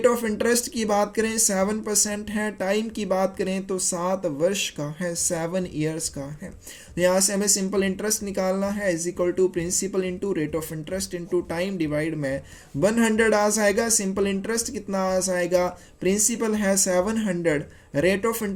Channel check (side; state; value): both; identical; correlation 1.00